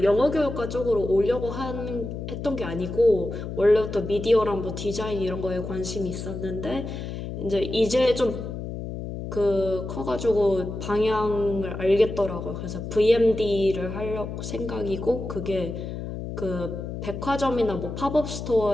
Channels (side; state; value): left; noise; hum, 7 dB below the sound